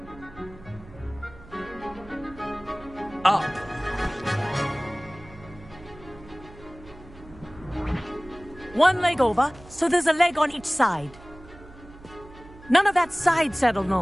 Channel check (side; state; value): right; noise; hum, 20 dB below the sound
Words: Up! One leg over, so there's a leg on each side. None of that side saddle